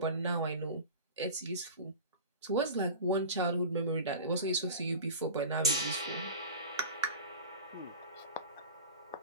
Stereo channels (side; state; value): both; inverted; correlation -0.34